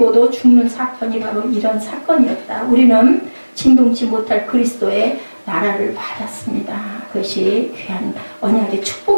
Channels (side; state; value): both; inverted; correlation -1.00